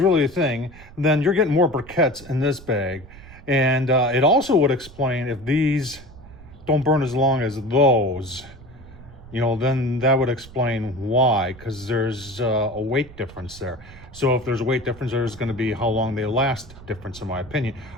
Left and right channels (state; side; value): noise; right; rumble, 19 dB below the sound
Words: thing, then you're getting more briquettes in this bag. And it also would explain if these don't burn as long as those. you know, then that would explain why, because there's a weight difference there. So if there's a weight difference, there's going to be how long they last difference, in my opinion.